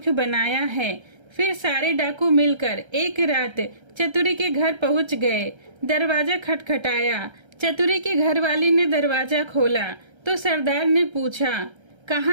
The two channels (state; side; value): late; left; 1.3 ms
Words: बनाया है। फिर सारे डाकू मिलकर एक रात चतुरी के घर पहुंच गए। दरवाजा खटखटाया। चतुरी के घरवाली ने दरवाजा खोला तो सरदार ने पूछा,